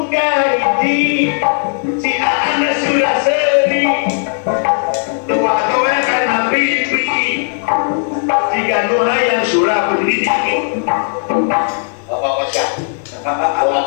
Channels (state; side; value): silent; right; digital silence